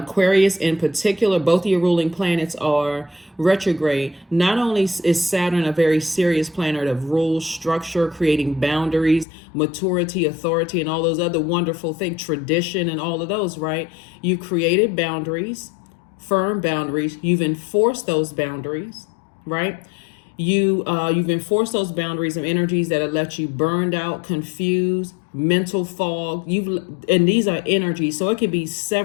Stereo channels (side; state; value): right; drops out; at 9.2 s